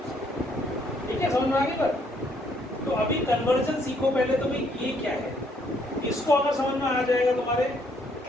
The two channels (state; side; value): normal; both; correlation 0.68